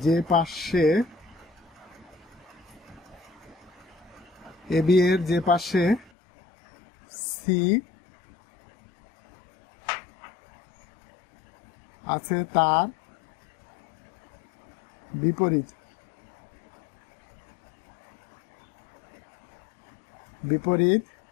যে পাশে সি আছে তার বিপরীত বিপরীত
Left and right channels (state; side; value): drops out; right; at 6.1 s